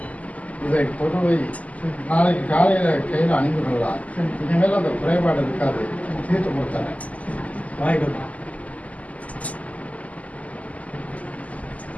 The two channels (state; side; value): late; right; 0.072 ms